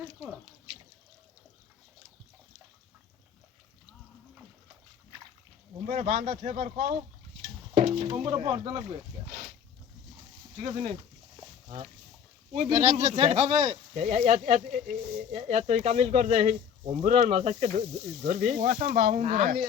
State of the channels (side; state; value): right; quieter; 7.9 dB